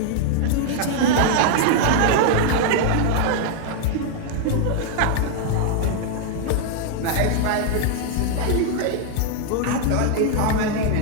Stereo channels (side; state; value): both; different; correlation 0.00